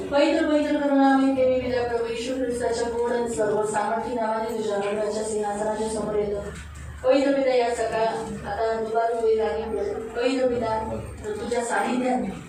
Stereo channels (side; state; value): both; identical; correlation 1.00